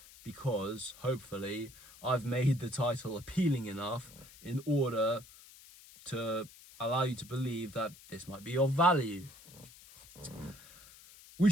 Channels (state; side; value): noise; left; hiss, 21 dB below the sound